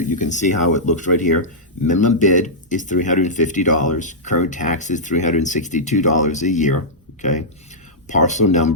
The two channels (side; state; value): both; normal; correlation -0.11